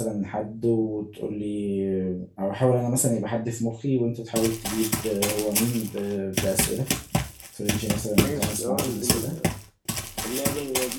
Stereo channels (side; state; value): both; identical; correlation 1.00